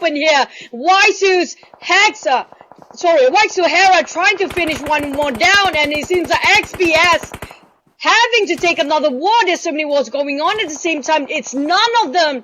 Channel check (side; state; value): both; identical; correlation 1.00